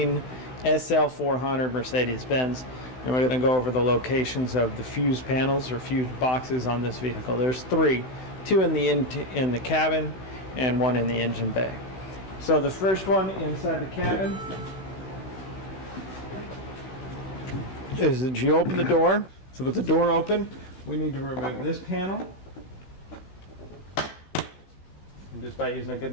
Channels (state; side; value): late; right; 16 ms